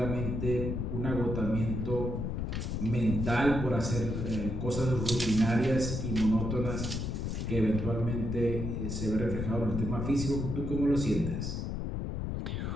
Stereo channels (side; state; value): left; noise; rumble, 2 dB below the sound